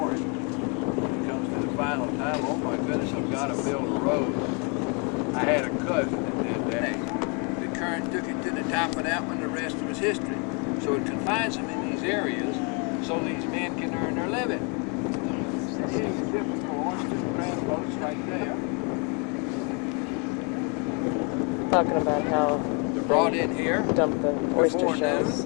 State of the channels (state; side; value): quieter; right; 34.9 dB